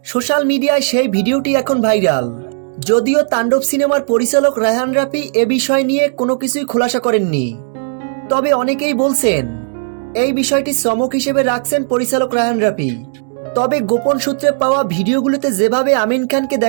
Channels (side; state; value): left; silent; digital silence